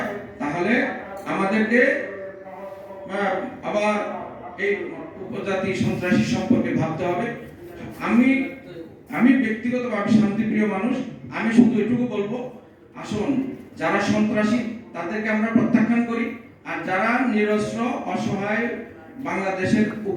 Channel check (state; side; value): identical; both; correlation 1.00